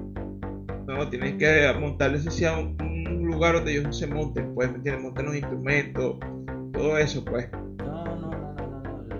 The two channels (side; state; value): both; identical; correlation 1.00